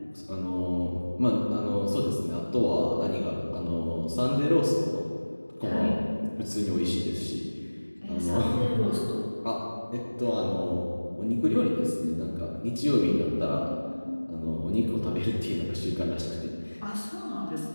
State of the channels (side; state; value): both; inverted; correlation -1.00